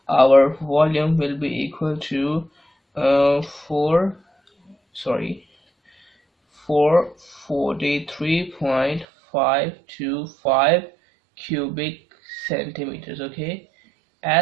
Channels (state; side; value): drops out; left; at 9.1 s